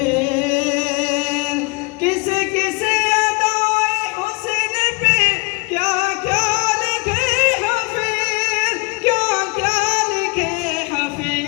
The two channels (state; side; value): quieter; right; 29.3 dB